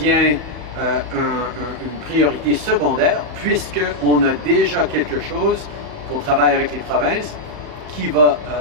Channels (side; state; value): left; late; 34 ms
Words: une priorité secondaire puisqu'on a déjà quelque chose qu'on travaille avec les provinces qui va